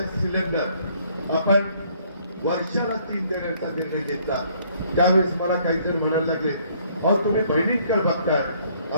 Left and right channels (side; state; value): both; inverted; correlation -0.63